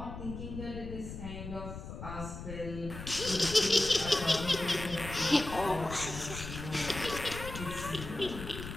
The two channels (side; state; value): left; noise; rumble, 9 dB below the sound